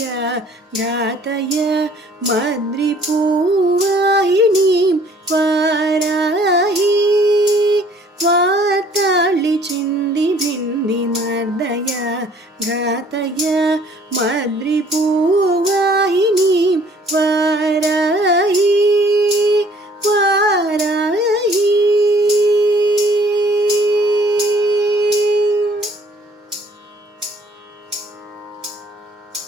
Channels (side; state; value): both; normal; correlation 0.57